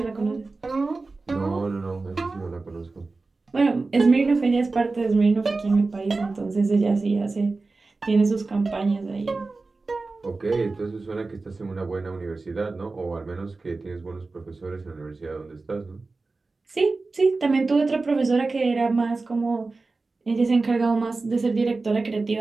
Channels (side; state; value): left; quieter; 3.7 dB